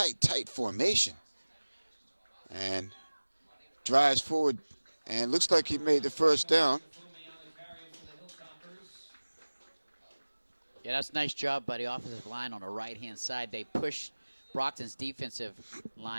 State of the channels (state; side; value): inverted; both; correlation -1.00